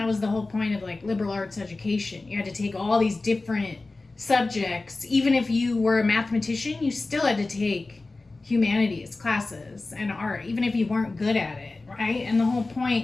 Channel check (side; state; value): right; quieter; 3.3 dB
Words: was the whole point of like liberal arts education. You had to take all these different subjects. Even if you were a mathematician, you still had to take humanities classes and art, even if you weren't good at it, right? And the whole